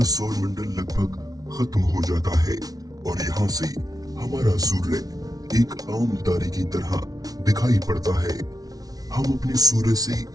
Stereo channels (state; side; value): late; left; 0.18 ms